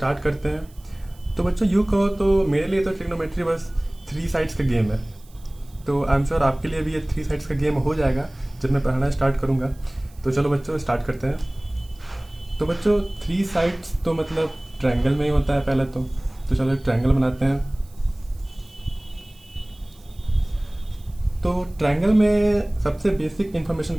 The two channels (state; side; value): noise; right; hiss, 28 dB below the sound